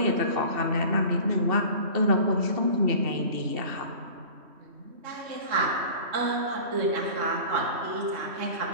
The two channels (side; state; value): left; late; 3.1 ms